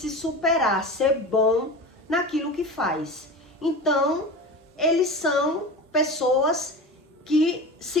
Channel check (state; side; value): normal; both; correlation 0.30